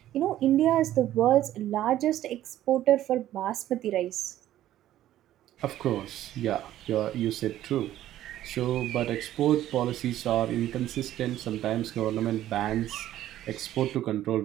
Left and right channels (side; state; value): left; quieter; 13.1 dB